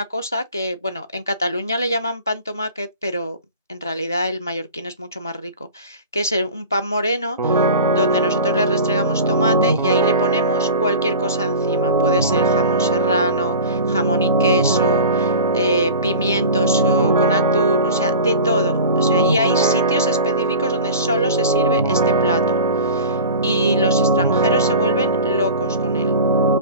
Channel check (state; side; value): inverted; both; correlation -0.34